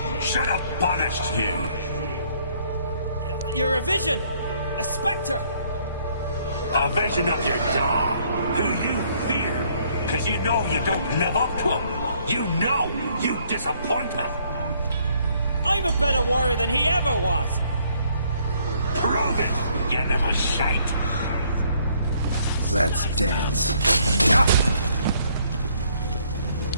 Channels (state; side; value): inverted; both; correlation -0.65